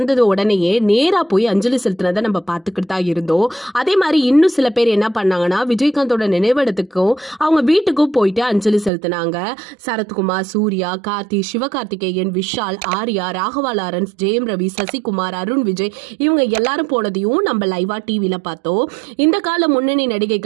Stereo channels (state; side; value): drops out; left; at 8.9 s